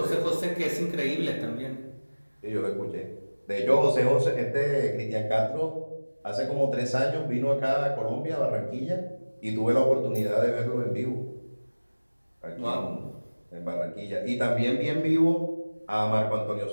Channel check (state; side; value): inverted; both; correlation -1.00